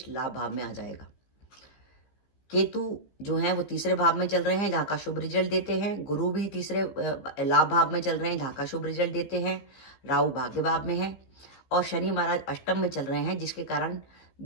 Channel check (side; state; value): right; late; 15 ms